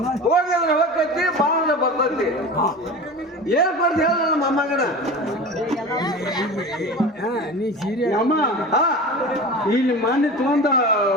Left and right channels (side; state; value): both; normal; correlation 0.33